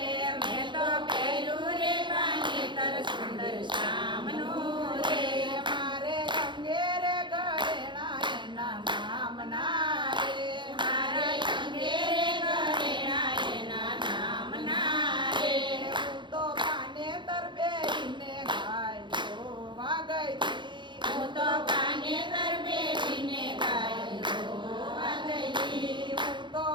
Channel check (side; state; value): left; late; 0.23 ms